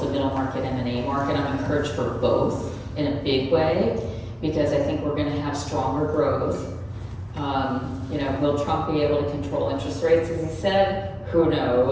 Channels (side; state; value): both; identical; correlation 1.00